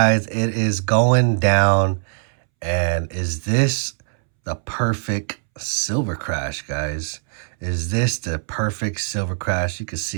It is going down. And is this the perfect silver crash, guys? Is this the perfect silver crash? You can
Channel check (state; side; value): silent; left; 65 dB below the other